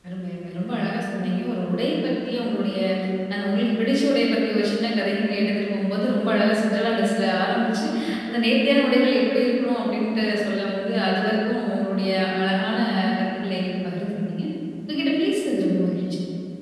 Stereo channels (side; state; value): both; identical; correlation 1.00